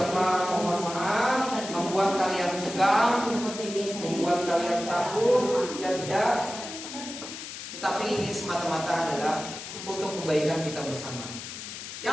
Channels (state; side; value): noise; left; hiss, 10 dB below the sound